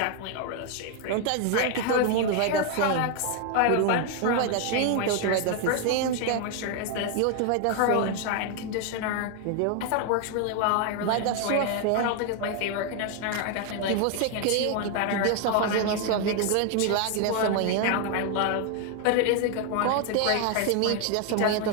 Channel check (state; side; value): different; both; correlation 0.00